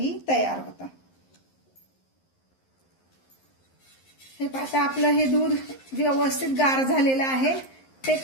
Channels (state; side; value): late; right; 11 ms